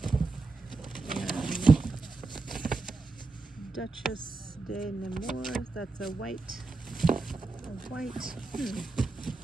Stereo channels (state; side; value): quieter; left; 3.7 dB